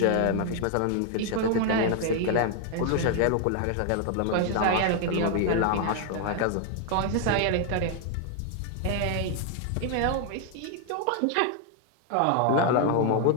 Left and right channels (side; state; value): both; different; correlation 0.00